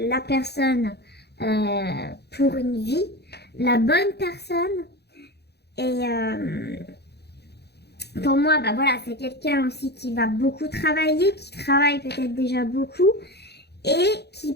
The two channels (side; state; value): right; late; 0.48 ms